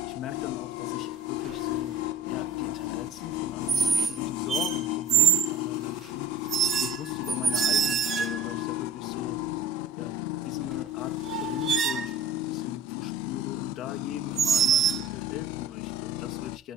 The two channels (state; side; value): normal; both; correlation 0.45